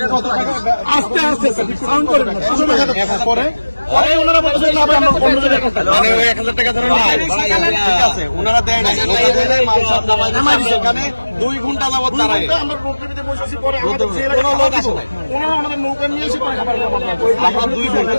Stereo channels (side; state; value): both; inverted; correlation -1.00